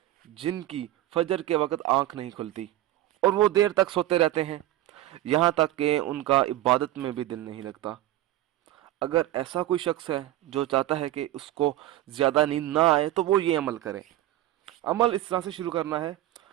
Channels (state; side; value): quieter; left; 14.8 dB